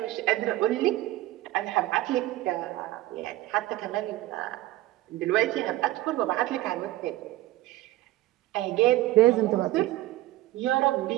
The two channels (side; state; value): left; quieter; 16.1 dB